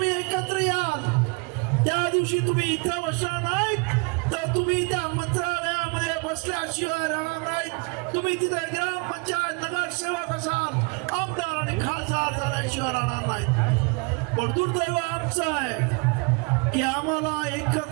एकत्र याल त्या दिवशी तुम्ही इथं बसणार नाहीत तर तुम्ही त्या मंत्रालयामध्ये बसल्याशिवाय राहणार नाहीत. तुम्ही तिथे ग्रामपंचायत नगरसेवक असाल, आमदार आणि खासदार झाल्याशिवाय राहणार नाहीत. पण दुर्दैव आमचं आहे की आम्हाला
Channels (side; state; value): left; quieter; 30.9 dB